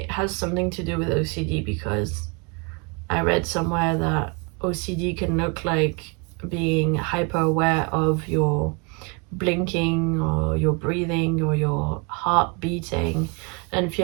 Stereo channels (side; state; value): left; quieter; 32.1 dB